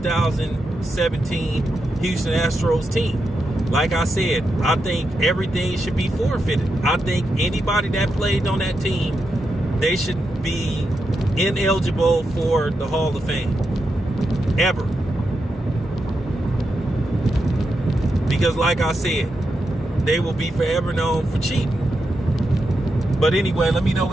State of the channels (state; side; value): normal; both; correlation 0.86